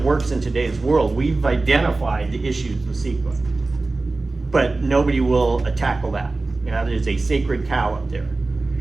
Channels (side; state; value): left; quieter; 3.4 dB